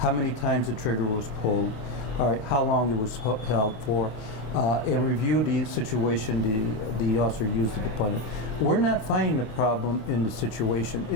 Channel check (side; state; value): right; late; 26 ms